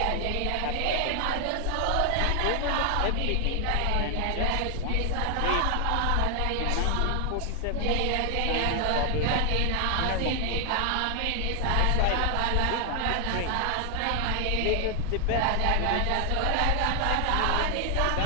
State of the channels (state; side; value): different; both; correlation 0.00